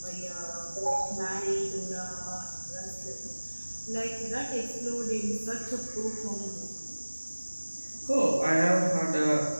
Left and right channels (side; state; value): both; inverted; correlation -1.00